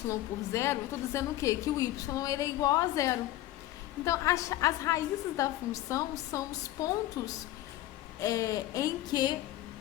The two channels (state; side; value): quieter; right; 15.1 dB